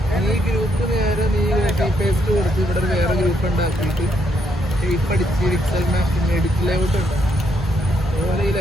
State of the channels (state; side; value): normal; both; correlation 0.75